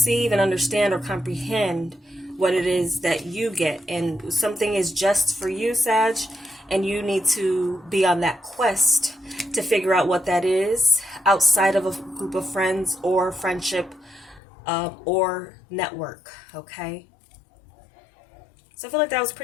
and understand or comprehend what it is that you get. And something is just for you, Sag, and you need to be on that quest to figure out what that is outside of a group of friends or friendship or network. Okay? So I feel like that was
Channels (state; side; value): drops out; right; at 14.4 s